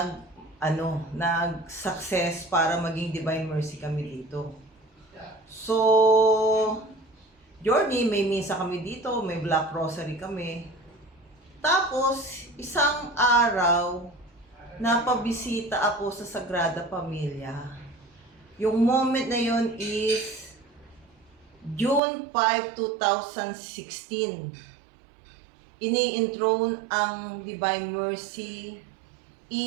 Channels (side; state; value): left; drops out; at 22.0 s